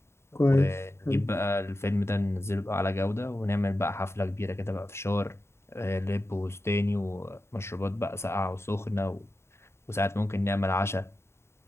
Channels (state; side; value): late; right; 0.13 ms